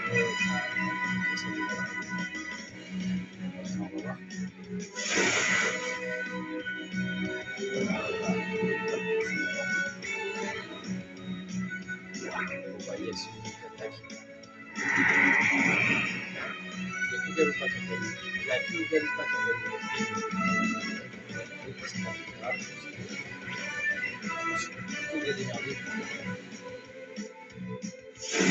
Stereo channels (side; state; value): both; identical; correlation 1.00